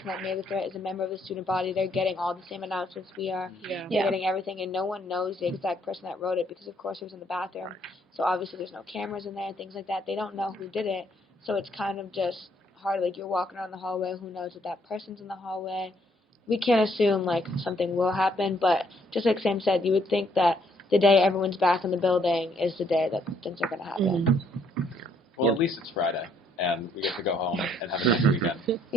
that made the threat is a member of the student body, they're getting all the same announcements we are. Yeah. They're getting everything, and no one knows the exact person that wrote it, because of course it was in the bathroom. So obviously there's no cameras in there and things like that. They don't know who did it, so it's kind of just hard. Like, you're walking around the hallway, who knows if that person's in the hallway. We can't assume like something will happen, but just like Sam said, you would think that the day everyone's back in the building is the day that things are going to happen. Well, at least it's Friday, and we get to go home and have a nice weekend.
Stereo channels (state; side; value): normal; both; correlation 0.68